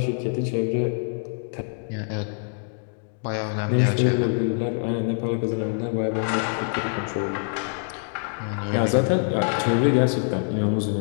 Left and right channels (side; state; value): right; silent; 62 dB below the other